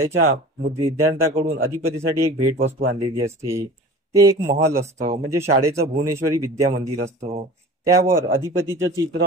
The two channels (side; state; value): both; normal; correlation 0.39